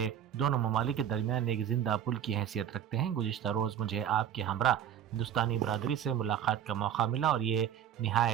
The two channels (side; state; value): left; quieter; 9.7 dB